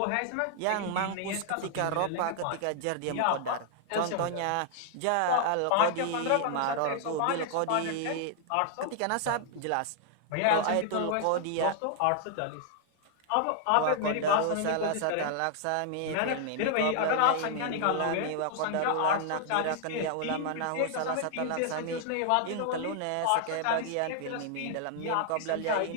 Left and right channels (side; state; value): both; different; correlation -0.01